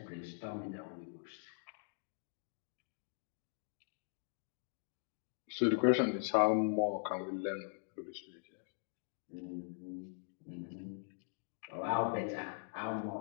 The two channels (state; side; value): silent; right; digital silence